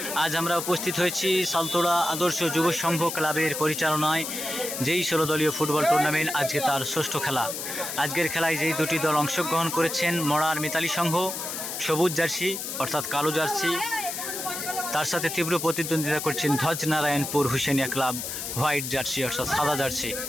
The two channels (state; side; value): noise; left; hiss, 5 dB below the sound